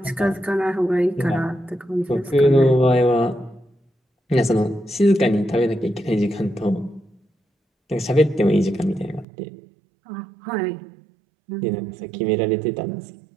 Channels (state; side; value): drops out; left; at 9.2 s